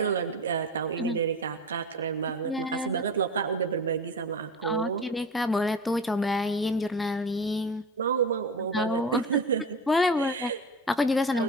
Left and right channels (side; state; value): both; normal; correlation 0.30